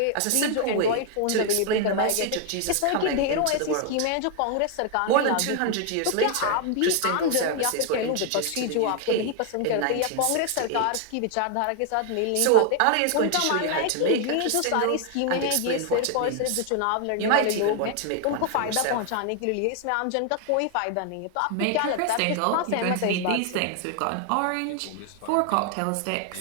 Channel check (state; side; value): different; both; correlation 0.00